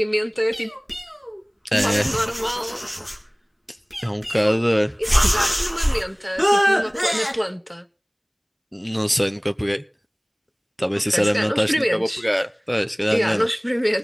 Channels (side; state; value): both; identical; correlation 1.00